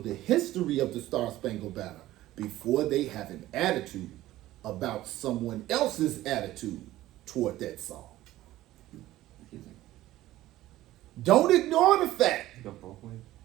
history of the Star Spangled Banner before they have an attitude about someone else's attitude toward that song. Excuse me. Don't ignore the fact Go both ways.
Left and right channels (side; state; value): left; quieter; 15.5 dB